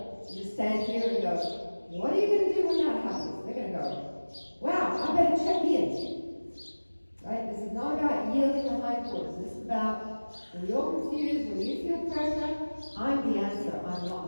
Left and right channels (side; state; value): both; inverted; correlation -1.00